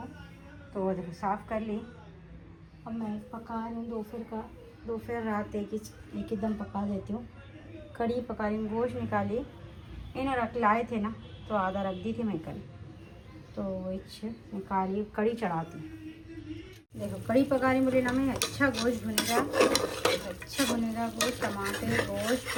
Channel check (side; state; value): both; identical; correlation 1.00